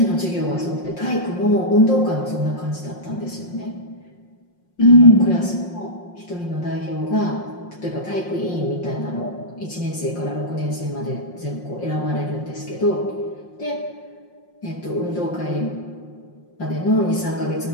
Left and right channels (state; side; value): late; right; 5.6 ms